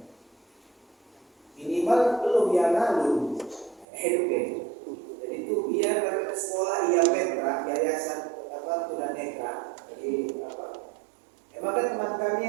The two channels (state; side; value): drops out; left; at 3.9 s